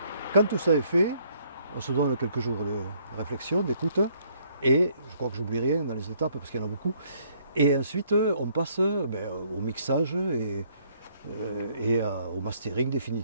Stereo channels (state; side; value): inverted; both; correlation -0.66